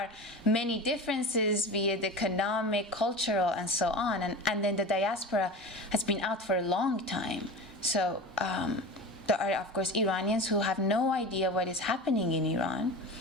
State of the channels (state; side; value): normal; both; correlation 0.31